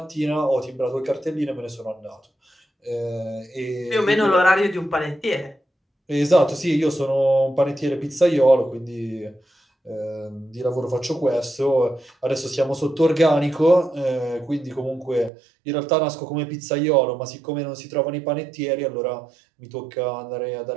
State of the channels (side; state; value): left; drops out; at 15.3 s